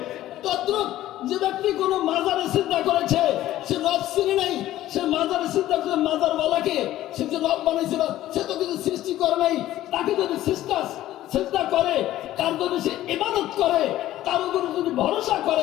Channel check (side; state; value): right; quieter; 14.2 dB